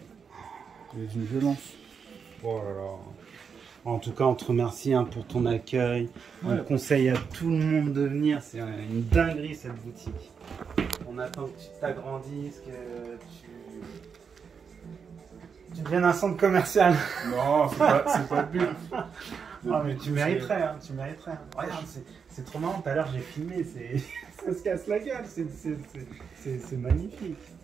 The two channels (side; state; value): left; quieter; 6.3 dB